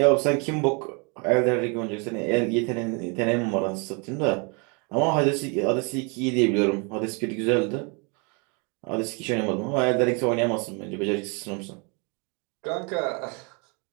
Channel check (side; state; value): left; quieter; 33.5 dB